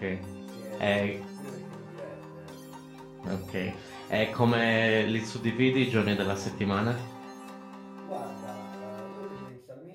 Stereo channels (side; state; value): both; identical; correlation 1.00